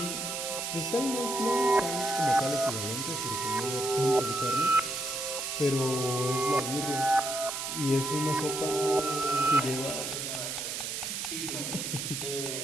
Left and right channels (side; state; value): right; noise; hiss, 4 dB below the sound